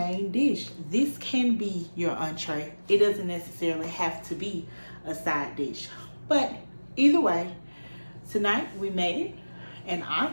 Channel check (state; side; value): inverted; both; correlation -1.00